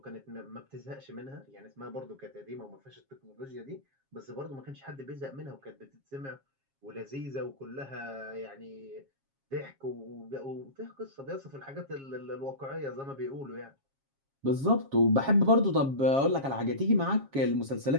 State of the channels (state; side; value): late; left; 7.3 ms